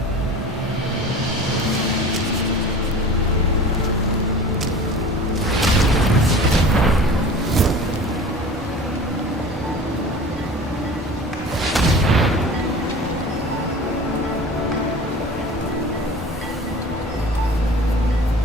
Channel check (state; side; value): normal; both; correlation 0.39